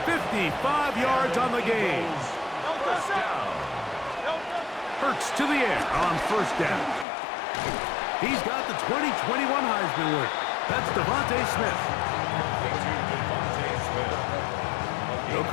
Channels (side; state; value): right; drops out; at 7.1 s